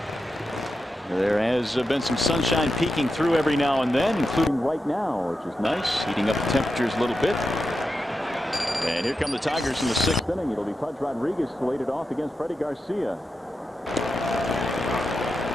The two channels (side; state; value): both; normal; correlation 0.87